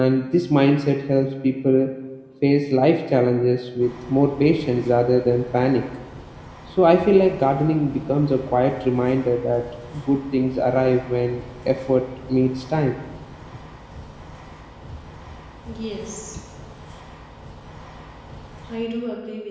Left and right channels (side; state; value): both; identical; correlation 1.00